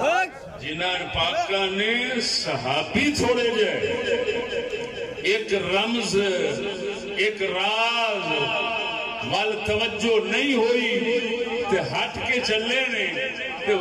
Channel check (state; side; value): identical; both; correlation 1.00